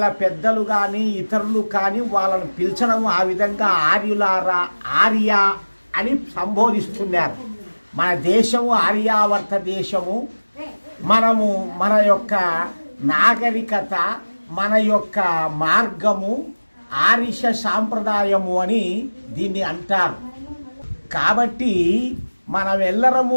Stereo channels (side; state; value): both; inverted; correlation -1.00